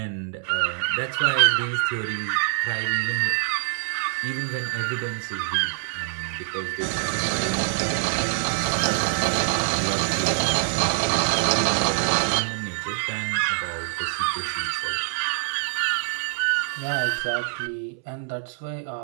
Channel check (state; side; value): silent; left; 60 dB below the other